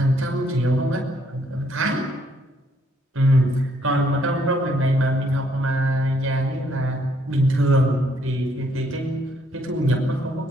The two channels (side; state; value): both; normal; correlation 0.69